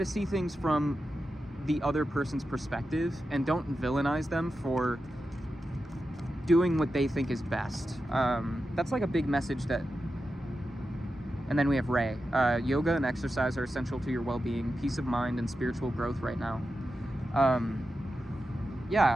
see things from the other person's perspective, and don't villainize them for doing what they think is best. That's like a big message that... And then we have Ray. Yoga and exercise are essential to your well-being, peace of mind, and spiritual growth right now.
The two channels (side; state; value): both; normal; correlation 0.90